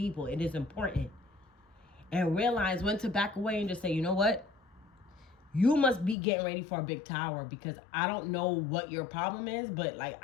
It is important. And realize when to back away and just say, you know what? You must be getting ready for a big tower, because I don't know what your problem is, but like,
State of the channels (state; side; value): drops out; right; at 6.2 s